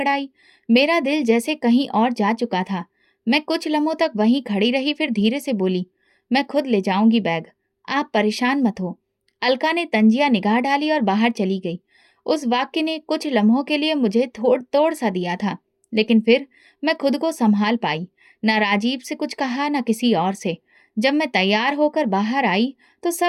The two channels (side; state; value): both; identical; correlation 1.00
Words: मेरा दिल जैसे कहीं और जा चुका था। मैं कुछ लम्हों तक वहीं खड़ी रही, फिर धीरे से बोली, मैं खुद ले जाऊंगी बैग, आप परेशान मत हो। अलका ने तंजिया निगाह डाली और बाहर चली गई। उस वाक्य ने कुछ लम्हों के लिए मुझे थोड़ तोड़ सा दिया था, लेकिन फिर मैं खुद को संभाल पाई। ना राजीव से कुछ कहा, ना किसी और से। जब मैं तैयार होकर बाहर आई तो